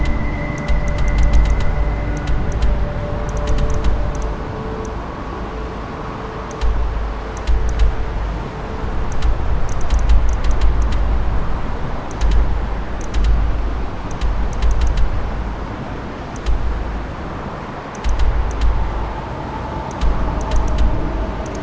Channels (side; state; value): both; identical; correlation 1.00